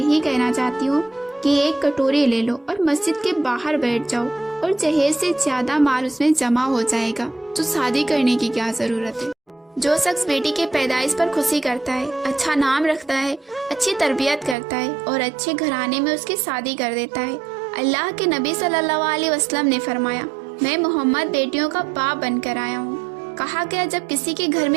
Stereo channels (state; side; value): drops out; left; at 14.6 s